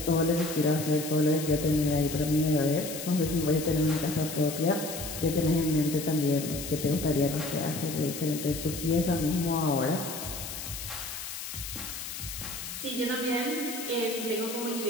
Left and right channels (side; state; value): left; noise; hiss, 8 dB below the sound